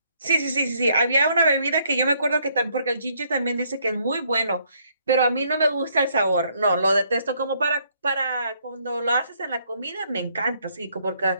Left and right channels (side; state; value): both; inverted; correlation -0.69